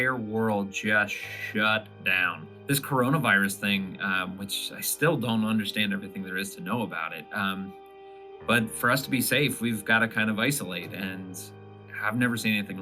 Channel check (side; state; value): both; identical; correlation 1.00